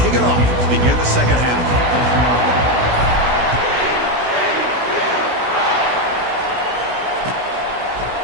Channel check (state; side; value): late; left; 16 ms